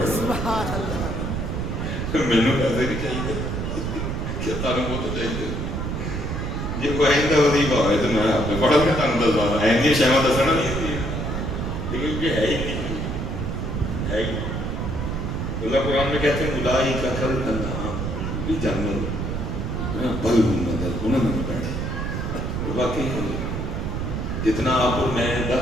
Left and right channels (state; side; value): noise; right; rumble, 2 dB below the sound